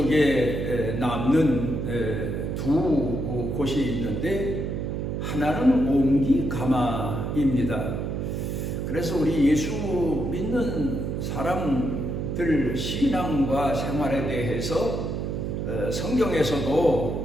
남는 두 곳이 있는데 하나는 옹기가마입니다. 그래서 우리 예수 믿는 사람들 신앙과 생활에 대해서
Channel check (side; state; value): right; noise; hum, 2 dB below the sound